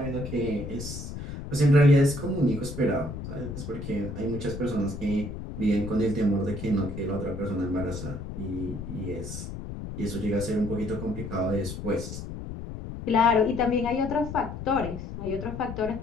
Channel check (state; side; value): noise; left; rumble, 8 dB below the sound